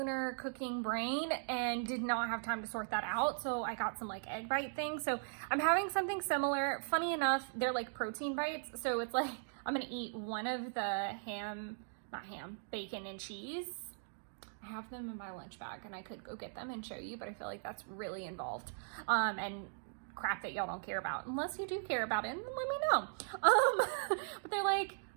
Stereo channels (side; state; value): left; silent; digital silence